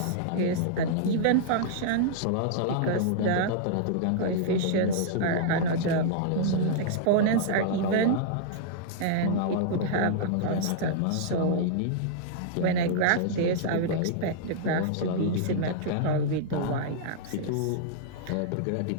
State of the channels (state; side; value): different; both; correlation -0.01